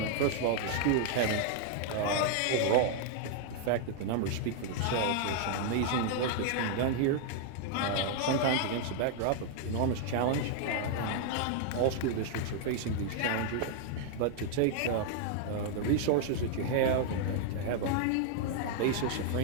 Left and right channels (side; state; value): both; different; correlation 0.00